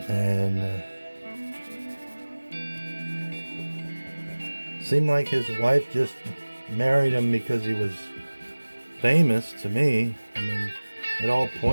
And seemed like his wife just married him because he was famous, to me. I mean, it all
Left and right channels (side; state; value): both; inverted; correlation -1.00